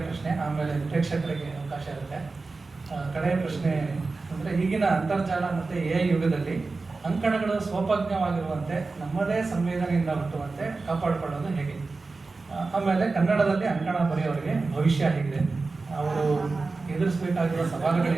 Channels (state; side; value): quieter; left; 3.8 dB